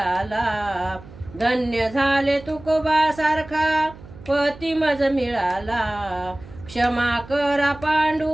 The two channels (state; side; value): noise; right; hum, 18 dB below the sound